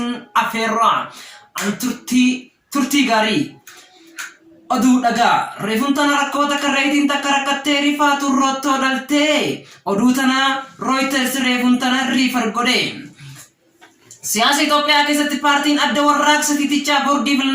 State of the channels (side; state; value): both; identical; correlation 1.00